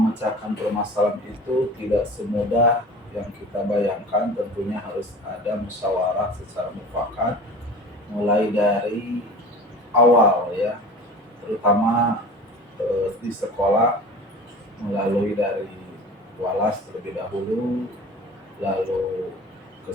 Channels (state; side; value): normal; both; correlation 0.39